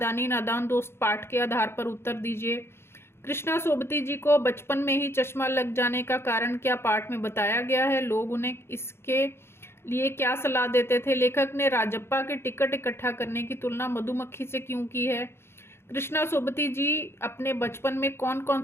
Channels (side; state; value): right; late; 0.12 ms